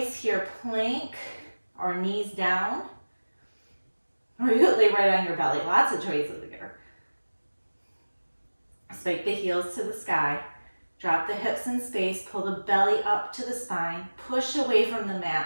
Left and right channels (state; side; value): inverted; both; correlation -1.00